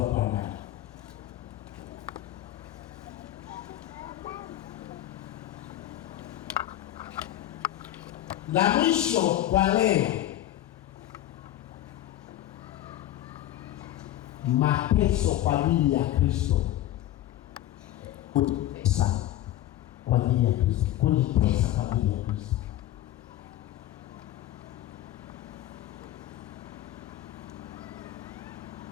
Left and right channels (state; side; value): quieter; right; 13.5 dB